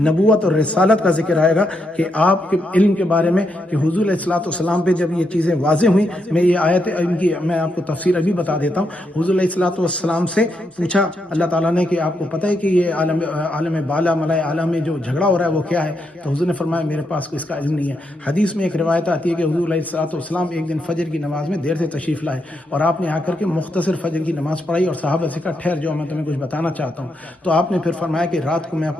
اور رسالت کا ذکر آئے گا کہ آپ کے علم کے بارے میں کہ حضور علیہ السلام پہ جب یہ چیزیں واضح ہوئیں، میں یہ آیت ان کی میں آپ کو تفسیر ابھی بتا دیتا ہوں۔ حضور علیہ السلام سے پوچھا اللہ تعالیٰ نے کہ آپ کو پتہ ہے کہ یہ عالم بالا ملائے اعلیٰ میں جو جھگڑا ہو رہا ہے وہ کیا ہے؟ تو حضور نے فرمایا میرے پاس اس کا علم نہیں ہے۔ حدیث میں ایک روایت آتی ہے کہ حضور علیہ السلام ایک دن فجر کی نماز میں دیر سے تشریف لائے اور آپ نے آ کر کے مختصر فجر کی نماز پڑھائی، اور صحابہ سے کہا ٹھہر جاؤ میں تمہیں کچھ بتانا چاہتا ہوں۔ تو آپ نے پھر فرمایا کہ رات کو میں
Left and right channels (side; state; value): both; normal; correlation 0.81